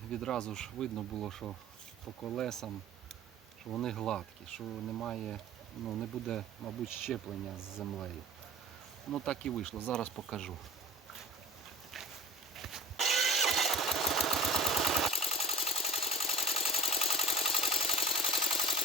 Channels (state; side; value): normal; both; correlation 0.37